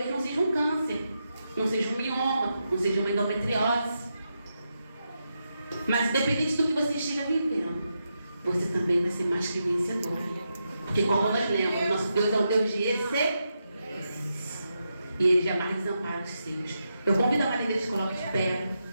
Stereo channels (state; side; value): inverted; both; correlation -0.85